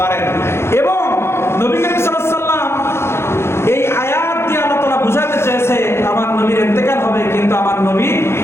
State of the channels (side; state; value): right; late; 0.12 ms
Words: পারেন। এবং নবী করিম সাল্লাল্লাহু আলাইহি ওয়াসাল্লাম এই আয়াত দিয়ে আল্লাহ তাআলা বুঝাতে চেয়েছে আমার নবীর ইন্তেকাল হবে, কিন্তু আমার নবী